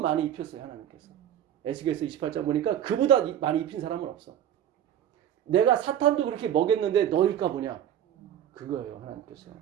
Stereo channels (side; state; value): left; quieter; 10.4 dB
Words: 입혔어요. 하나님께서. 에스겔서 28장 보니까 그보다 많이 입힌 사람은 없어. 내가 사탄도 그렇게 먹였는데 너일까 보냐. 그거예요. 하나님께서.